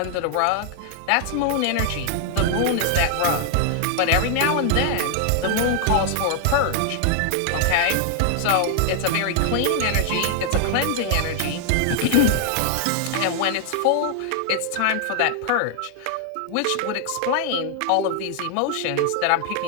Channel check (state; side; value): different; both; correlation 0.00